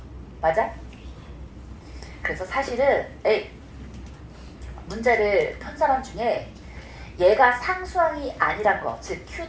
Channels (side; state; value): both; identical; correlation 1.00